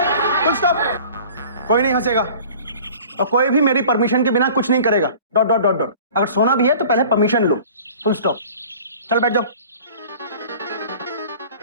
Full stop. कोई नहीं हंसेगा और कोई भी मेरी परमिशन के बिना कुछ नहीं करेगा। Dot dot dot dot. अगर सोना भी है तो पहले परमिशन लो। Full stop. चल बैठ जाओ।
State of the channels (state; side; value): inverted; both; correlation -0.45